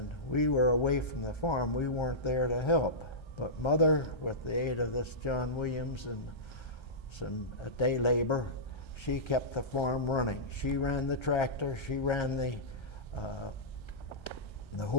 we were away from the farm. We weren't there to help. But Mother, with the aid of this John Williams and some day labor, she kept the farm running. She ran the tractor, she ran the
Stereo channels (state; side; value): late; right; 1.3 ms